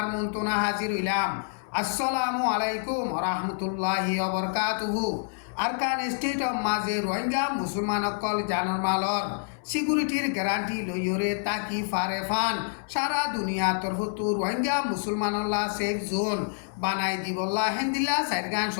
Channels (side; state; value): right; silent; 58 dB below the other